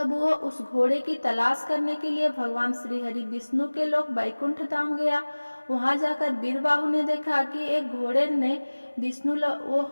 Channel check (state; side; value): inverted; both; correlation -1.00